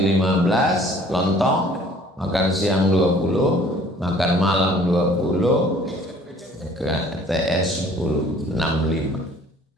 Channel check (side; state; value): both; normal; correlation 0.54